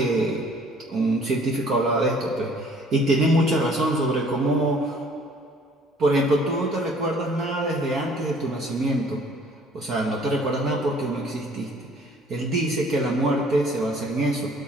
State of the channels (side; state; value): both; normal; correlation 0.56